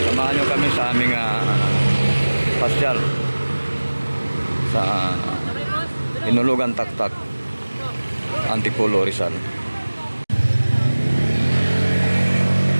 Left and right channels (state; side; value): inverted; both; correlation -1.00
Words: Samahan nyo kami sa aming pasyal sa Hinulugan Taktak, Antipolo, Rizal.